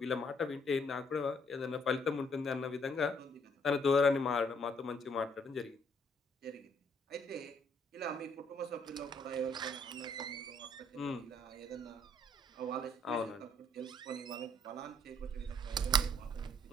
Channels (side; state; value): both; normal; correlation 0.67